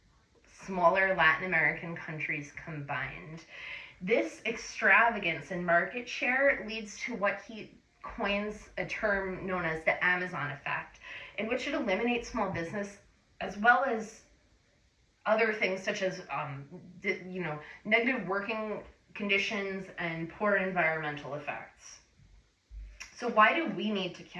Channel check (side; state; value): both; identical; correlation 1.00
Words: smaller Latin American countries combined. This extravagance in market share leads to what he coins a term known as the Amazon effect, in which it eliminates small business as well as other things such as negative working conditions and poor environmental effects. So why do we need to